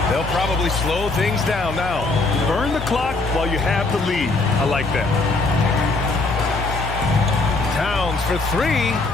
They'll probably slow things down now. Burn the clock while you have the lead. I like that. Towns for three.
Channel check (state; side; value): quieter; right; 3.4 dB